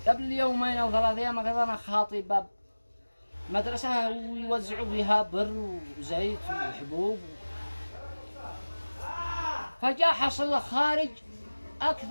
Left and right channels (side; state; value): both; inverted; correlation -1.00